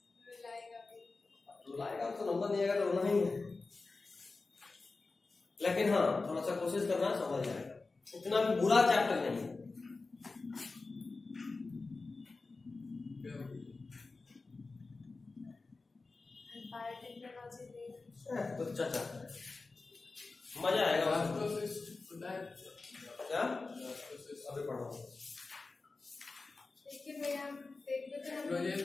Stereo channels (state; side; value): quieter; right; 3.7 dB